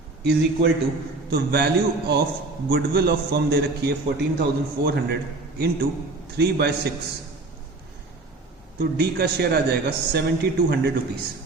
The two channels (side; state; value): left; quieter; 3.2 dB